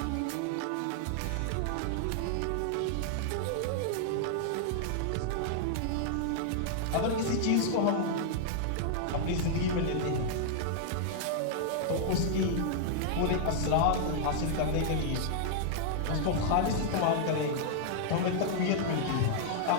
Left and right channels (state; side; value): different; both; correlation -0.01